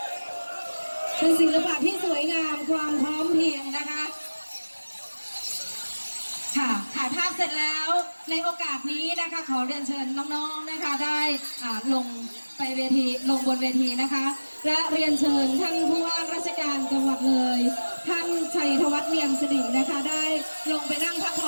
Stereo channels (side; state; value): both; inverted; correlation -1.00